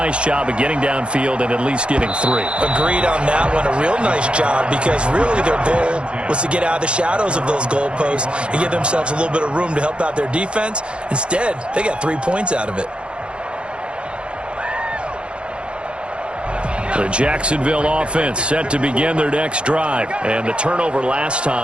job of getting downfield and at least getting 3. Agreed on that one. A real nice job because really their goal was to get out of the shadows of those goalposts and give themselves a little bit of room to help out their defense. Instead, they got 3 points out of it. The Jacksonville offense set to begin their next drive. And the turnover last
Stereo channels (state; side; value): late; left; 0.058 ms